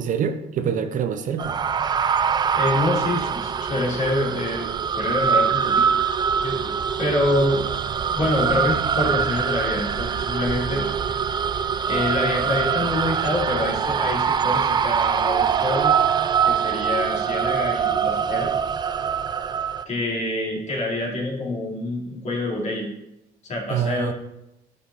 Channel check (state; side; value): quieter; left; 3.7 dB